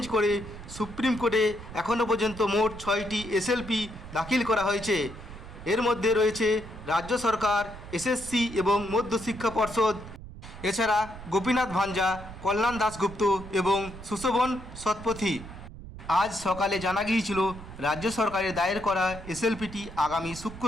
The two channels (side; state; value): right; noise; rumble, 14 dB below the sound